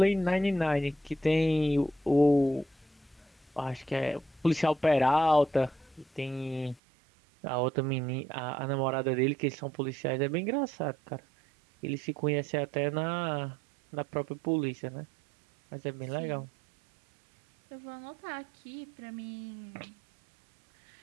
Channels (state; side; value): drops out; left; at 6.8 s